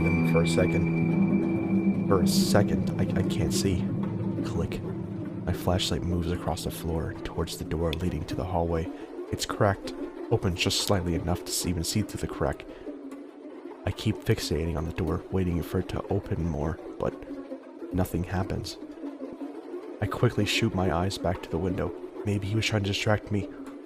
them for a second. For a second, I can't see. Click. My flashlight moves across the floor towards the door leading to the hallway. It's cracked, open just slightly enough to even see through the crack. I keep fixating on the door, waiting for it to open more, but nothing happens. I quickly shoot my eyes back to the window. Maybe he was trying to distract me.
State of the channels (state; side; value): identical; both; correlation 1.00